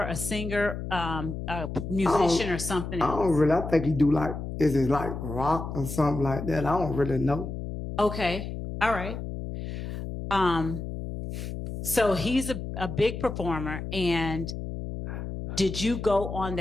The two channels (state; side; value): noise; left; hum, 6 dB below the sound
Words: a singer, a musician, or something else? I don't really. I think he do is it like rock or something like that? I don't really know. Okay. All right. So he's a big performer. And did you go on